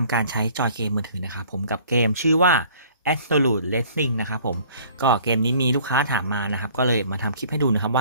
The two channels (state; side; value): inverted; both; correlation -0.53